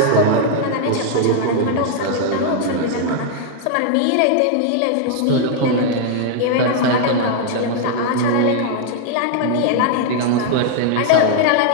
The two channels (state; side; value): different; both; correlation 0.00